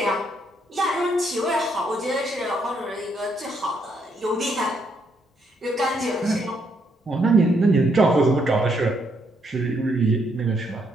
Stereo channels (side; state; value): both; normal; correlation 0.74